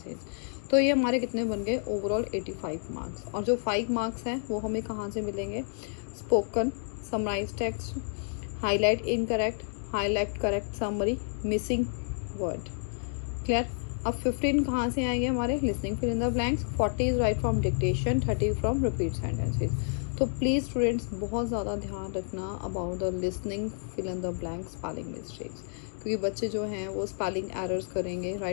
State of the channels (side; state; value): right; silent; digital silence